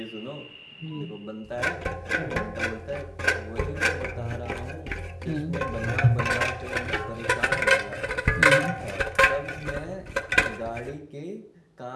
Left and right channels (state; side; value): identical; both; correlation 1.00